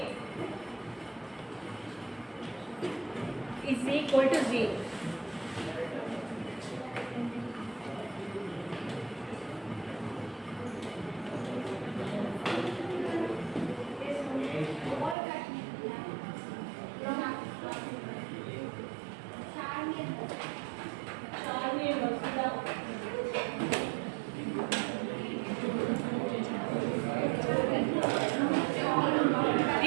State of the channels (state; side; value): drops out; left; at 15.2 s